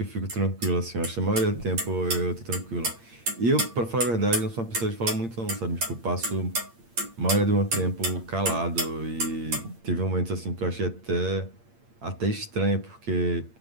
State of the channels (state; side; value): late; left; 8.7 ms